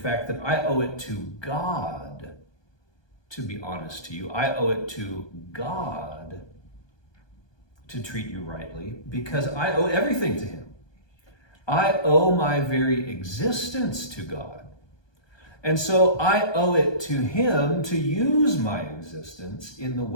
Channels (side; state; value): right; late; 1.2 ms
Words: that I owe it to God to be honest to you. I owe it to God to treat you rightly because I owe everything to him. I owe my very existence to God. And so I owe it to him to use my existence in the